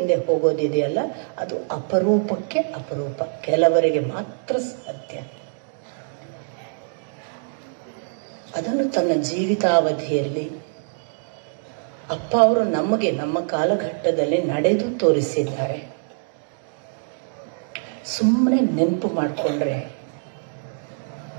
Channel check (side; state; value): left; silent; digital silence